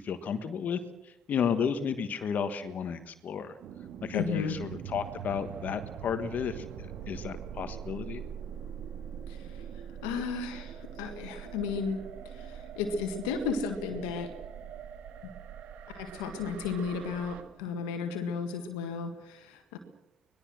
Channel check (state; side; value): quieter; right; 4.4 dB